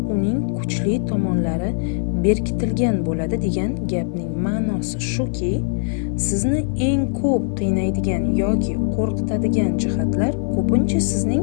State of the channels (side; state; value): right; silent; 61 dB below the other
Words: uning kuchli tomonlari berkitilgan bo'ladi degan gapning ma'nosi shuki, sizni eng ko'p qiynaydigan yoki qo'rqitadigan jihatlar ko'pincha